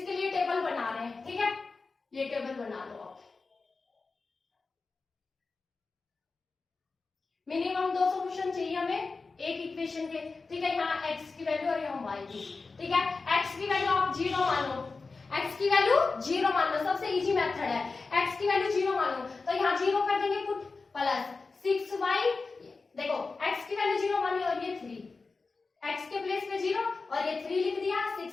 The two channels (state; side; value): quieter; right; 4.1 dB